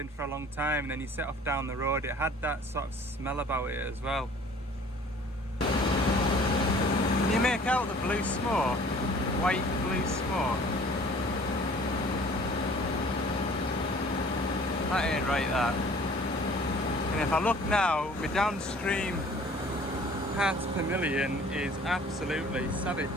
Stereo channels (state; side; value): normal; both; correlation 0.51